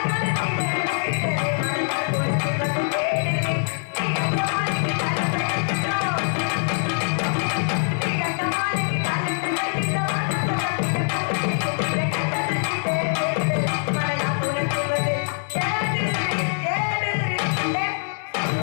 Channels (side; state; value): right; silent; digital silence